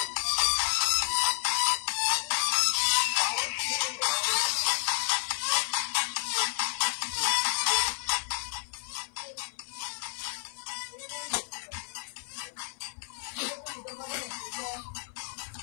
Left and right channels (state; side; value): silent; right; 57 dB below the other